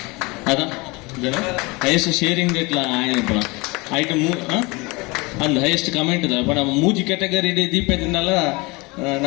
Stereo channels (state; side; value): quieter; right; 25.4 dB